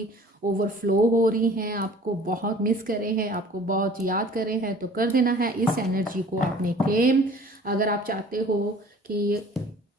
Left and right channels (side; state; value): both; normal; correlation 0.49